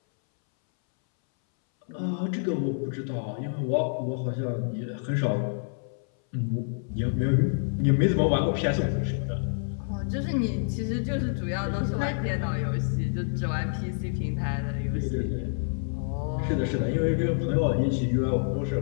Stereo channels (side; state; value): right; silent; 60 dB below the other